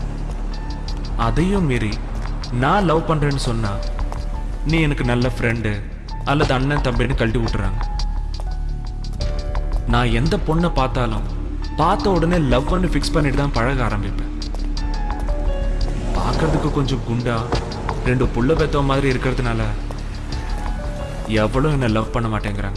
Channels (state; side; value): identical; both; correlation 1.00